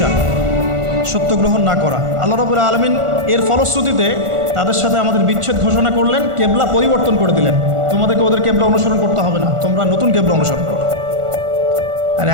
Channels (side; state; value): left; late; 1.4 ms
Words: সত্য গ্রহণ না করা। আল্লাহ রাব্বুল আলামিন এর ফলশ্রুতিতে তাদের সাথে আমাদের বিচ্ছেদ ঘোষণা করলেন, কেবলা পরিবর্তন করে দিলেন। তোমাদেরকে ওদের কেবলা অনুসরণ করতে হবে না, তোমরা নতুন কেবলা অনুসরণ করো। আর